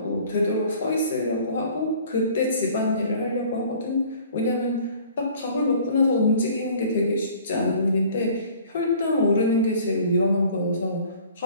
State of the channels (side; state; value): both; inverted; correlation -0.51